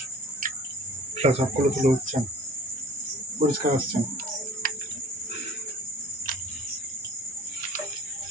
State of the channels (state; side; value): normal; both; correlation 0.47